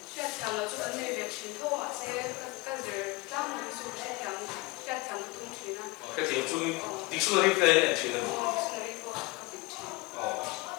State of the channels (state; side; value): quieter; right; 23.6 dB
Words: Xuyên thẳng là chỗ này việc truyền thâu ạ sẽ các giờ tam một số sẽ thẳng xuyên thẳng tung truyền cái thiệp chung dictionary thế anh chị nên dictionary ko kapit chi